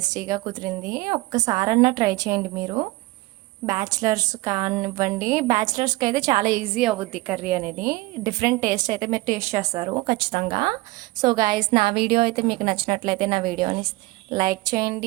కుదిరింది. ఒక్కసారన్నా ట్రై చేయండి మీరు. బ్యాచిలర్స్ కానివ్వండి, బ్యాచిలర్స్కి అయితే చాలా ఈజీ అవుద్ది కర్రీ అనేది. డిఫరెంట్ టేస్ట్ అయితే మీరు టేస్ట్ చేస్తారు ఖచ్చితంగా. సో గాయస్, నా వీడియో అయితే మీకు నచ్చినట్లయితే నా వీడియోని లైక్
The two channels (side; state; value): left; quieter; 20.8 dB